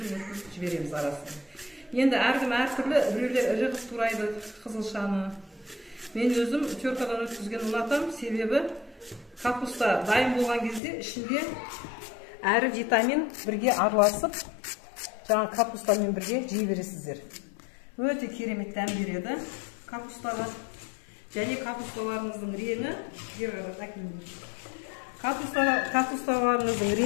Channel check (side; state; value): right; drops out; at 10.8 s